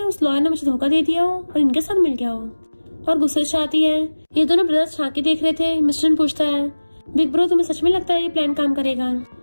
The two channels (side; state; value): both; inverted; correlation -1.00